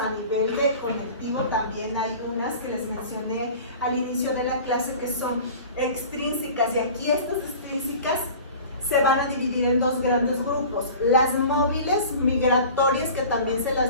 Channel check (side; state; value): both; inverted; correlation -0.40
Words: nivel de conectivo, también hay unas que les mencioné al inicio de la clase que son extrínsecas, y aquí estas extrínsecas se van a dividir en dos grandes grupos: las móviles migratorias, que también se